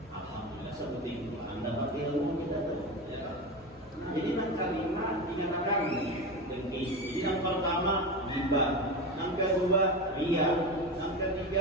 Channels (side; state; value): both; normal; correlation 0.22